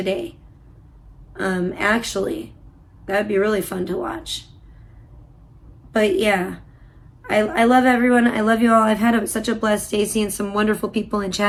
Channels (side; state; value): both; identical; correlation 1.00